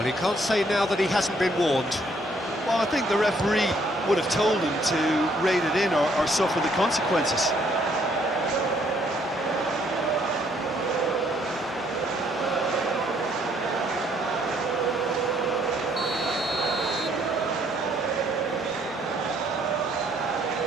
he can't say now that he hasn't been warned. Well, I think the referee would have told him to rein it in or suffer the consequences.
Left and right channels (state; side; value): normal; both; correlation 0.67